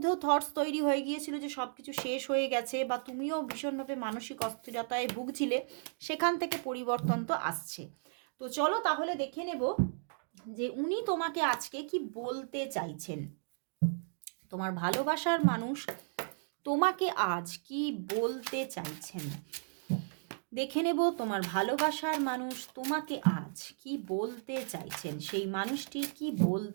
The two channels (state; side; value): silent; left; digital silence